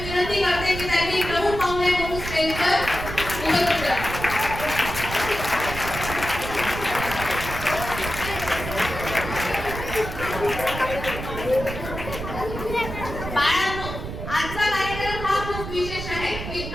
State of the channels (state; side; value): noise; right; rumble, 8 dB below the sound